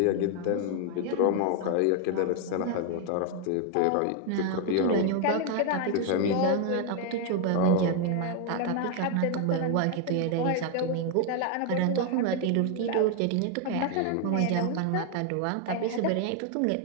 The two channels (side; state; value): both; different; correlation 0.00